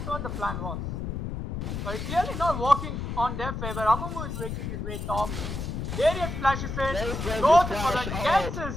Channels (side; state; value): left; noise; rumble, 4 dB below the sound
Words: what the plan was. But it's clearly not working on their favor. Amumu is making his way top. Darius flashes in, Darius runs goes his for flash it, gets